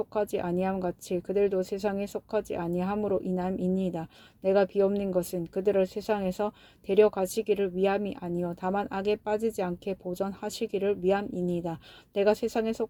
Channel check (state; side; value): identical; both; correlation 1.00